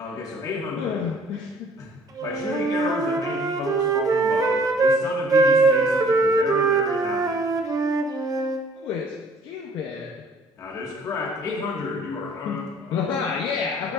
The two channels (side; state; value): both; normal; correlation 0.55